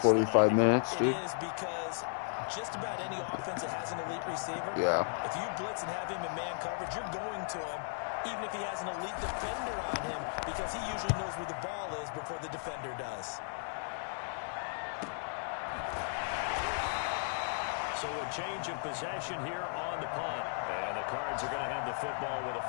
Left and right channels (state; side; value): silent; right; digital silence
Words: 45 minutes, dude. It is because just about any offense that has an elite receiver, if you blitz and have him in man coverage, you're going to him, even if he has an elite defender on him, because he usually knows where the ball is before the defender does. So a change of possession here on the punt. And the Cards are going to have the football with a